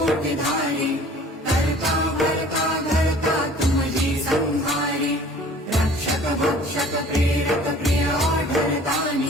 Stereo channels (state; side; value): normal; both; correlation 0.49